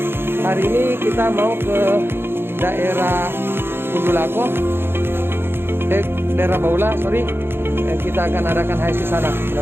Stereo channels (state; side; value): late; left; 0.11 ms